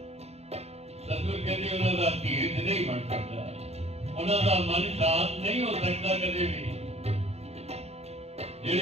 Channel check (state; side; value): late; left; 0.31 ms